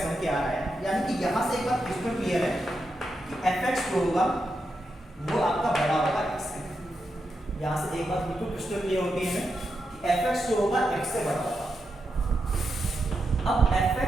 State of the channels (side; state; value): both; normal; correlation 0.86